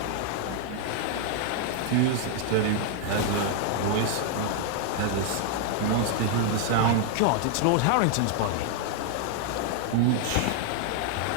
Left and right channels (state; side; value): different; both; correlation 0.00